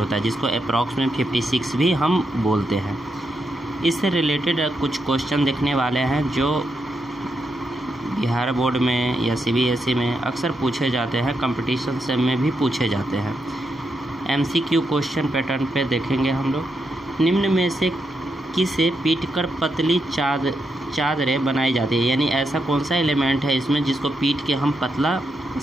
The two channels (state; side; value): normal; both; correlation 0.83